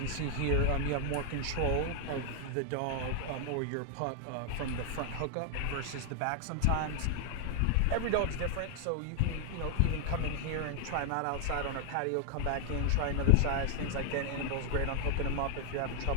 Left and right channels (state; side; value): different; both; correlation 0.00